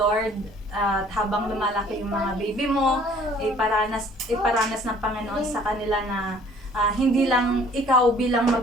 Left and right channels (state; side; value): normal; both; correlation 0.55